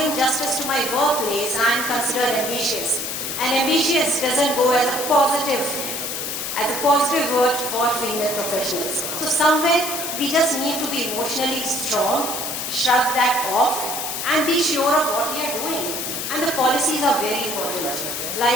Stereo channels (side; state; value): left; noise; hiss, 4 dB below the sound